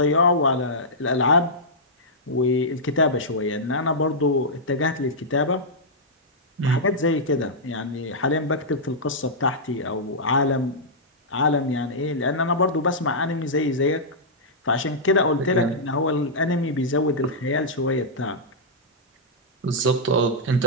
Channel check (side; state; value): both; normal; correlation -0.10